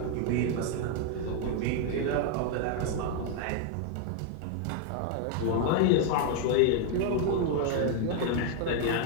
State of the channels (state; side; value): different; both; correlation 0.00